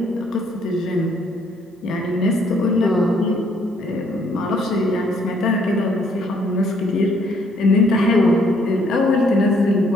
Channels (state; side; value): normal; both; correlation 0.66